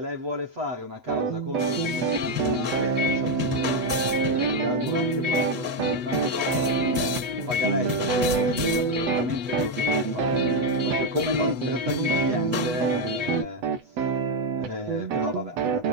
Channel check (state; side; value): late; left; 8.1 ms